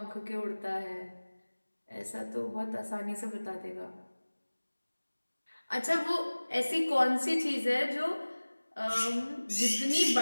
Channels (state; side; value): inverted; both; correlation -1.00